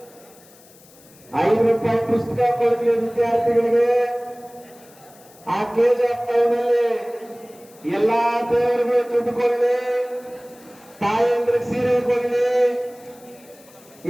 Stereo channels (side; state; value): left; noise; hiss, 25 dB below the sound